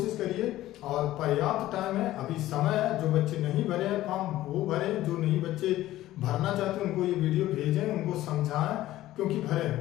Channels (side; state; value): right; quieter; 15.0 dB